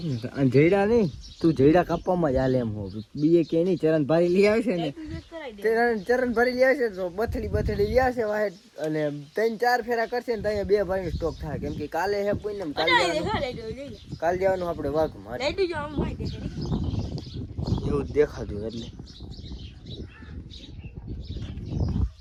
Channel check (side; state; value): both; identical; correlation 1.00